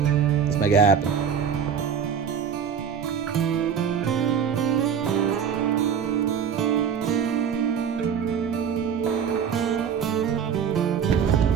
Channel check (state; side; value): quieter; left; 7.5 dB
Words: Let's make it happen.